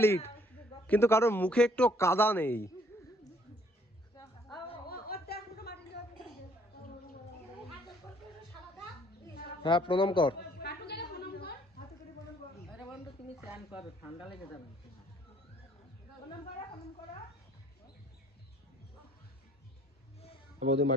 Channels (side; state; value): both; normal; correlation 0.63